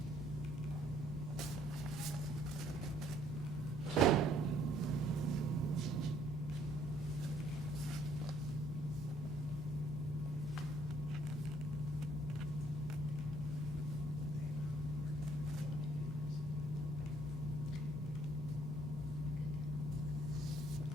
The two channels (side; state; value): both; normal; correlation 0.63